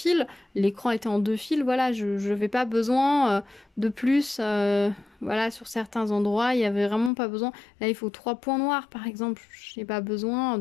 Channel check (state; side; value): drops out; right; at 7.1 s